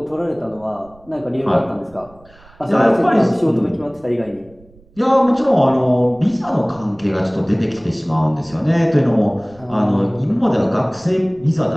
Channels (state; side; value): noise; right; rumble, 27 dB below the sound